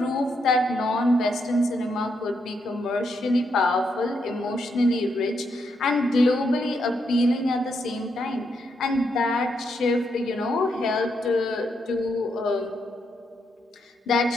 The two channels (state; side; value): normal; both; correlation 0.79